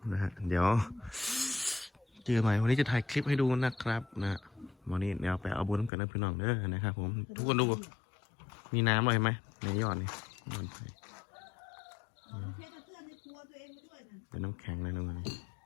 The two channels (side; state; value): right; drops out; at 5.9 s